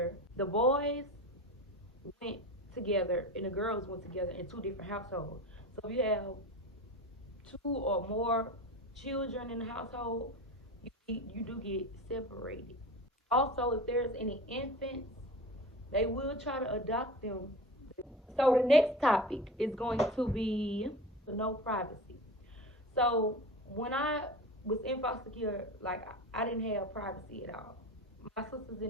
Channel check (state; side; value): normal; both; correlation 0.32